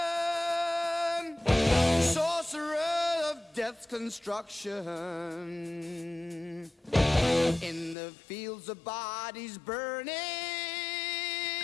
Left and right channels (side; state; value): right; drops out; at 8.0 s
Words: sorcerer of death's construction. In the fields of bodies burning,